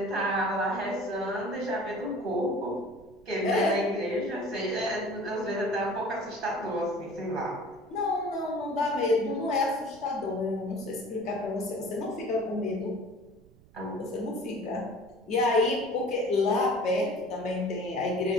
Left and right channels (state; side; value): noise; right; rumble, 26 dB below the sound